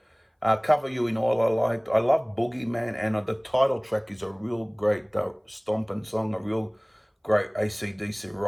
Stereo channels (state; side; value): identical; both; correlation 1.00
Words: Cover You in All I liked. I love Boogeyman, and the title track is a real great stomping song, a real great AC/DC